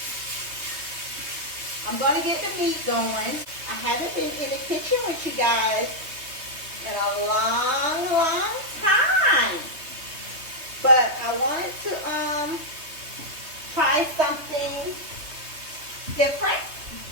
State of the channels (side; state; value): left; late; 3.2 ms